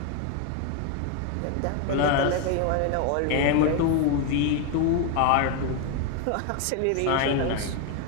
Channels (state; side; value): different; both; correlation 0.01